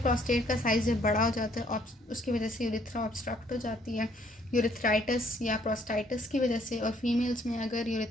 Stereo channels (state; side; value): normal; both; correlation 0.65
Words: प्रोस्टेट का साइज़ जब बड़ा हो जाता है उसकी वजह से यूरिथ्रा ऑब्स्ट्रक्ट हो जाती है, यूरिथ्राइटिस या प्रोस्टाइटिस की वजह से। और फीमेल्स में अगर